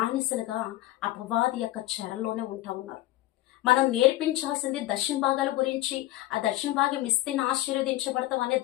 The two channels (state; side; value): quieter; right; 16.3 dB